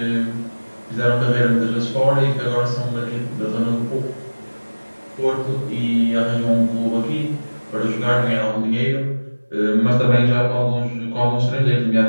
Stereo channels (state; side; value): inverted; both; correlation -1.00